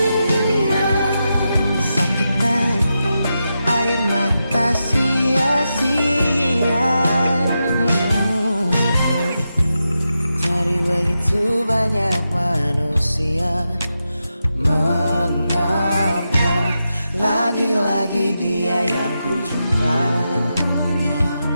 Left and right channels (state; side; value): inverted; both; correlation -0.88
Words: sakitan air mata sia-sia. Dari begitu banyak manusia, mengapa lagi-lagi dia yang ku jumpa?